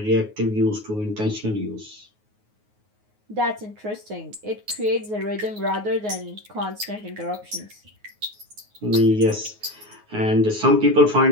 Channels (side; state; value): left; late; 9.5 ms